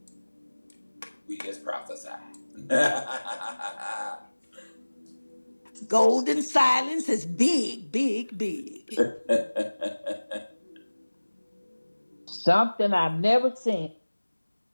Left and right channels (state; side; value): inverted; both; correlation -1.00